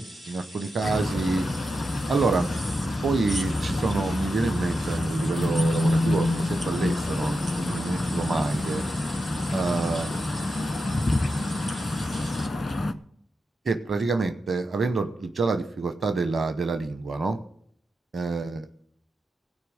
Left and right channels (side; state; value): both; normal; correlation 0.88